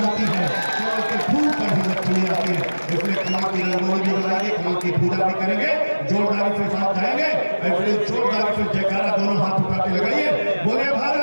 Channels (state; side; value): inverted; both; correlation -1.00